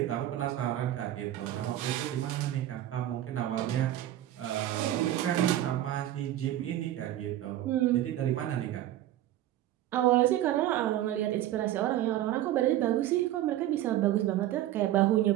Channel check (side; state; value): left; quieter; 13.3 dB